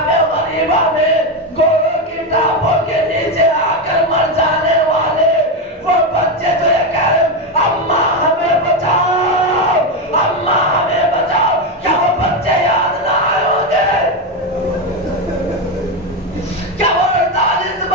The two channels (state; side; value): normal; both; correlation 0.11